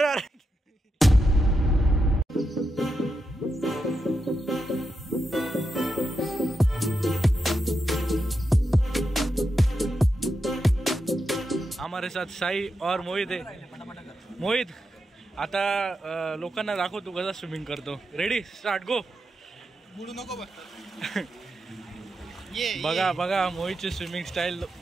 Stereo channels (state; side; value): normal; both; correlation 0.86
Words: अरे. हमारे साथ साई और मोहित है. मोहित आता लोकांना दाखव तू कसा स्विमिंग करतो. रेडी स्टार्ट गो. बुडू नको बघा बघा मोहितची स्विमिंग स्टाइल